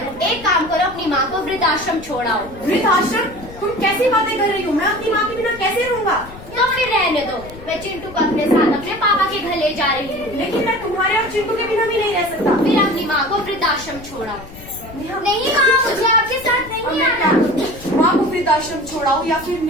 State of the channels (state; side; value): noise; left; rumble, 17 dB below the sound